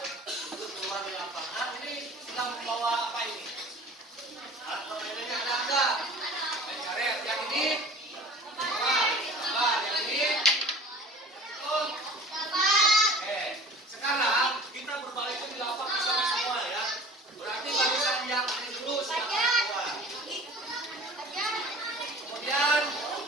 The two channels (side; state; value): both; normal; correlation 0.43